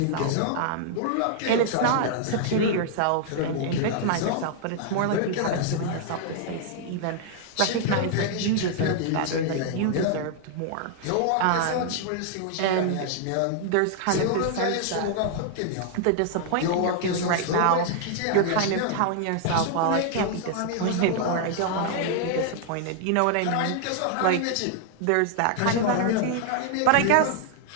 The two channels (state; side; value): different; both; correlation 0.00